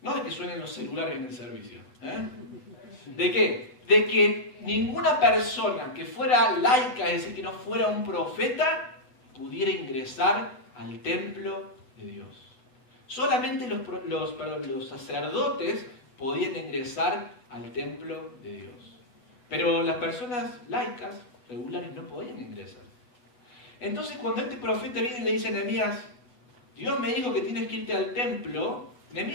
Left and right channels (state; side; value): late; right; 7.9 ms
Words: no de que suenen los celulares en el servicio, ¿de qué? De que ninguna persona que fuera laica, es decir, que no fuera un profeta, pudiera ingresar al templo de Dios. Solamente los sacerdotes podían ingresar al templo de Dios. Pero las personas laicas, regulares, no podían ingresar. Entonces cuando este profeta viene y le dice a Nehemías, Dios me dijo que tienes que irte al templo,